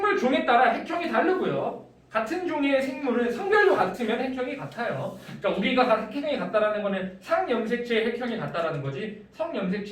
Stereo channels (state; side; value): identical; both; correlation 1.00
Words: 종에 따라 핵형이 다르고요. 같은 종의 생물은 성별도 같으면 핵형이 같아요. 그러니까 우리가 핵형이 같다라는 거는 상염색체의 핵형이 같다라는 거지